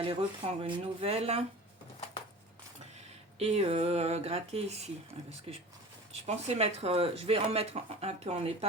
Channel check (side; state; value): both; normal; correlation 0.38